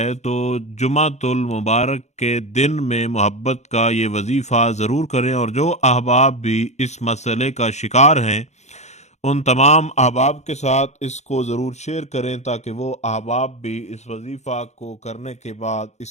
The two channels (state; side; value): late; right; 0.33 ms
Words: تو جمعۃ المبارک کے دن میں محبت کا یہ وظیفہ ضرور کریں۔ اور جو احباب بھی اس مسئلے کا شکار ہیں، ان تمام احباب کے ساتھ اس کو ضرور شیئر کریں تاکہ وہ احباب بھی اس وظیفہ کو کرنے کے بعد اس